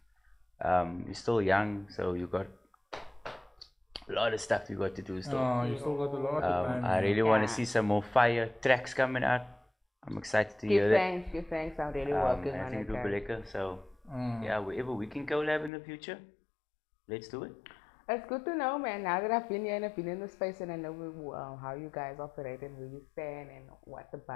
You're still young, so you got a lot of stuff you got to do still. Oh, you still got a lot of time. I really want to see some more fire tracks coming out. I'm excited to hear that. Give thanks. I'm really working I on think it. it'll be Guys. lekker. So yeah, wherever we can collab in the future, let's do it. It's good to know, man. Now that I've been here and I've been in the space and I know how you guys operate and where you stand and what the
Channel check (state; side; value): drops out; right; at 15.7 s